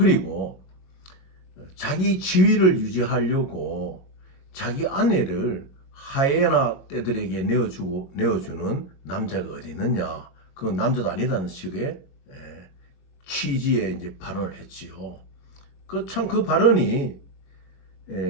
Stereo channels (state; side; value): late; right; 22 ms